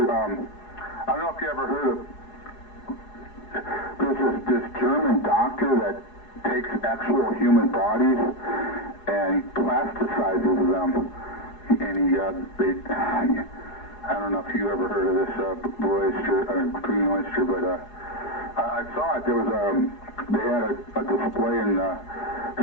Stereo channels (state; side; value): late; right; 4.8 ms